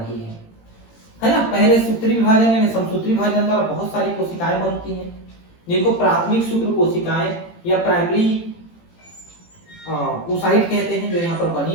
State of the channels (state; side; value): late; right; 18 ms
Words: है ना। पहले सूत्री विभाजन यानी समसूत्री विभाजन द्वारा बहुत सारी कोशिकाएं बनती हैं, जिनको प्राथमिक शुक्र कोशिकाएं या प्राइमरी oocyte कहते हैं, जो यहाँ पर